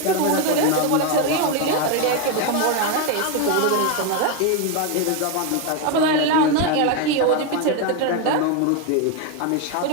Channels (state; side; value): different; both; correlation 0.02